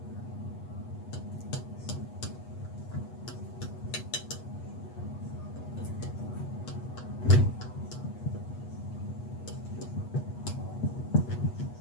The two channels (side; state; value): right; late; 8.2 ms